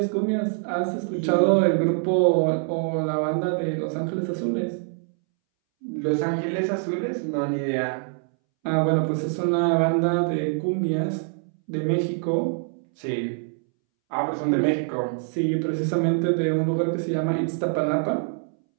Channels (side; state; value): left; silent; 62 dB below the other